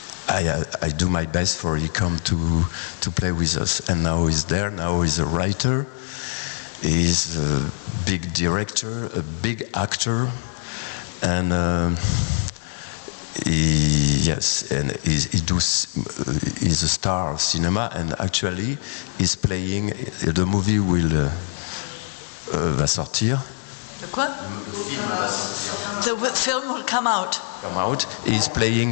do my best for he come to play with us. And now he's there. Now he's a writer. He's a big director, a big actor, and he's a star of cinema. And actually, he's playing. The movie va sortir. The quoi? The film will come out. He's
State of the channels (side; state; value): right; silent; digital silence